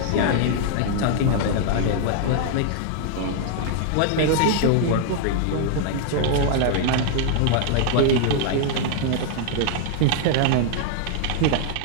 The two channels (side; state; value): both; different; correlation 0.00